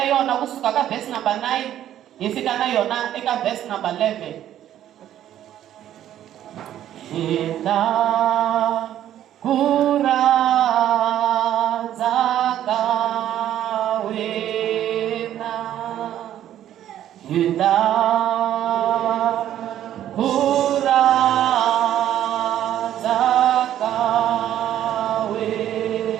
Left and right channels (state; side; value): quieter; left; 11.6 dB